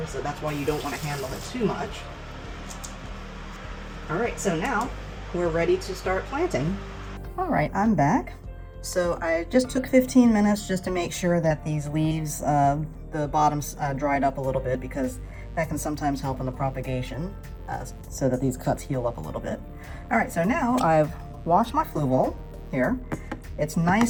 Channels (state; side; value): identical; both; correlation 1.00